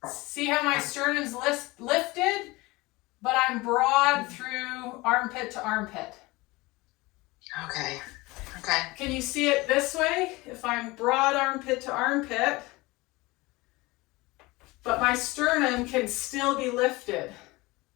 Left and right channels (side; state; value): right; quieter; 22.1 dB